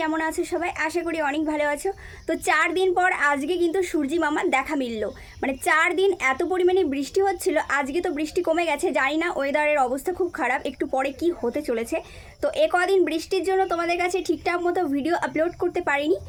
কেমন আছো সবাই? আশা করি অনেক ভালো আছো। তো 4 দিন পর আজকে কিন্তু সূর্যি মামার দেখা মিললো। মানে 4 দিন এত পরিমাণে বৃষ্টি হচ্ছিল, আজকে তো বৃষ্টি কমে গেছে। জানি না, ওয়েদারের অবস্থা খুব খারাপ, একটু পরে কি হতে চলেছে। তো কদিন বৃষ্টির জন্য তোমাদের কাছে ঠিকঠাক মতো ভিডিও আপলোড করতে পারিনি।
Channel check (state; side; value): identical; both; correlation 1.00